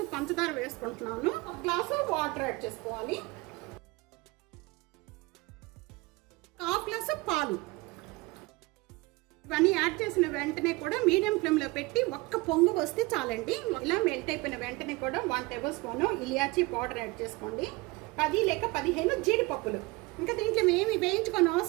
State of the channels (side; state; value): left; quieter; 23.5 dB